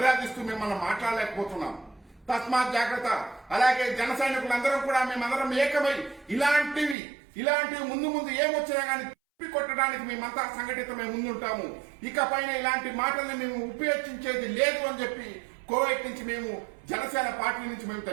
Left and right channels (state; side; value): drops out; left; at 7.0 s